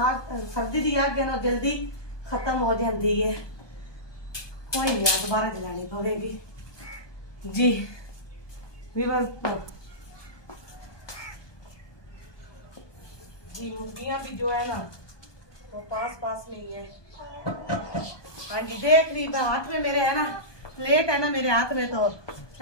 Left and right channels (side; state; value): right; late; 1.2 ms